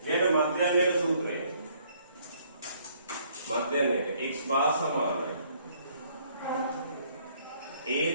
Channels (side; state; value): both; inverted; correlation -0.64